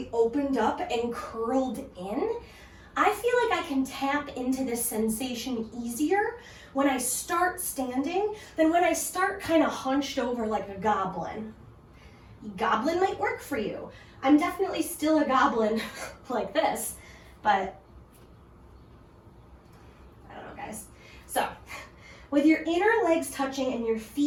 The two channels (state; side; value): identical; both; correlation 1.00